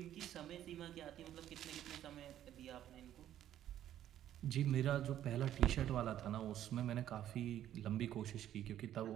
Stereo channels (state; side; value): quieter; left; 11.6 dB